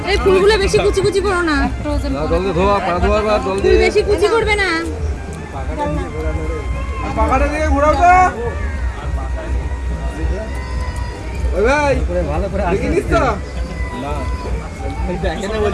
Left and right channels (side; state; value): both; identical; correlation 1.00